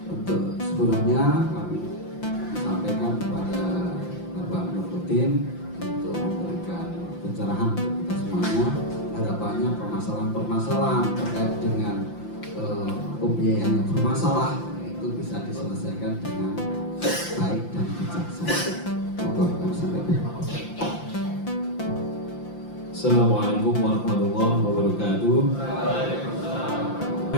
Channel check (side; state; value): right; late; 5.8 ms